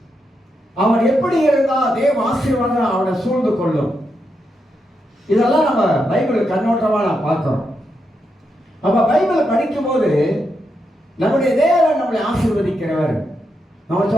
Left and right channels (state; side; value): normal; both; correlation 0.83